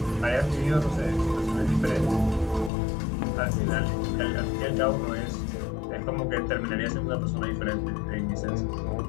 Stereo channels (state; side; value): drops out; right; at 2.7 s